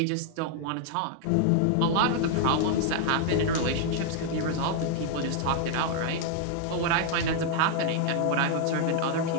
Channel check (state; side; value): different; both; correlation 0.00